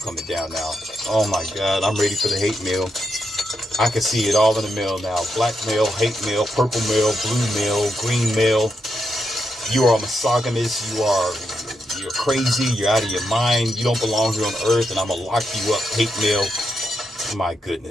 down now. Oh my God. I'm ready for the hate mail. I can see it all in the mail now. Black mail, hate mail, purple mail, blue mail, green mail. You are a misogynist. You're crazy. You're out of your mind. You don't belong here on earth, and I'm going to lock you up. Hate mail. My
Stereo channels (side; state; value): both; normal; correlation 0.83